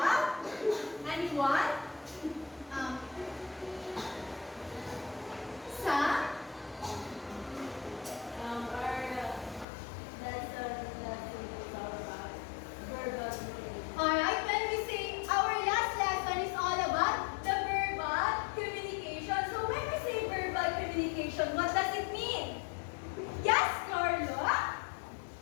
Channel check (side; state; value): right; drops out; at 9.7 s